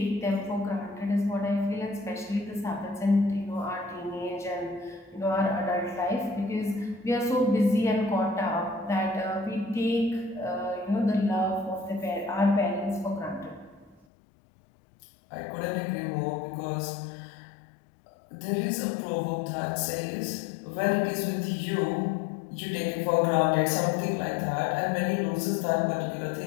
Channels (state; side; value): drops out; right; at 14.1 s